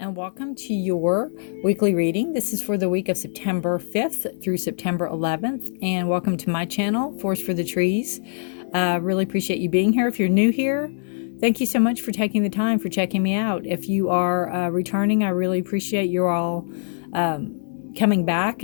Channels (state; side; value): silent; right; 59 dB below the other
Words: welcome to your weekly reading. This is for the week of September 5th through September 11th, and welcome to my channel, Forest for the Trees. Really appreciate you being here. If you're new here, thank you so much for taking the time for checking me out. If you are returning, I really appreciate you all coming back